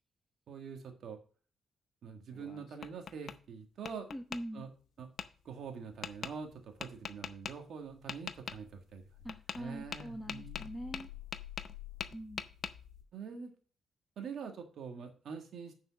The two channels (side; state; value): both; normal; correlation 0.68